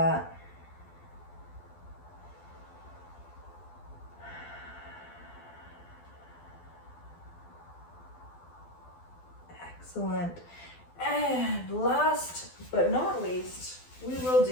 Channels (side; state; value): right; late; 12 ms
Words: Excellent. And last but not least, we will